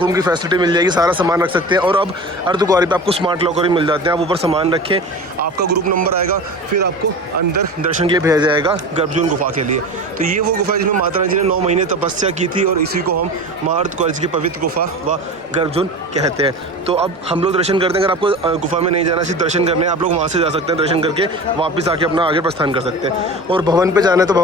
रूम की फैसिलिटी मिल जाएगी, सारा सामान रख सकते हैं। और अब अर्धकुंवारी पे आपको स्मार्ट लॉकर भी मिल जाते हैं, आप ऊपर सामान रखें, आपका ग्रुप नंबर आएगा, फिर आपको अंदर दर्शन के लिए भेजा जाएगा गर्भजून गुफा के लिए। तो ये वो गुफा है जिसमें माता रानी जी ने 9 महीने तपस्या की थी, और इसी को हम माँ अर्धकुंवारी की पवित्र गुफा व गर्भजून कहते हैं। तो अब हम लोग दर्शन करते हैं। अगर आपको गुफा में नहीं जाना, सिर्फ दर्शन करने हैं, आप लोग वहाँ से जा सकते हैं, दर्शन करके वापस आके अपना आगे प्रस्थान कर सकते हैं। और भवन पे जाना है तो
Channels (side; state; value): both; normal; correlation 0.32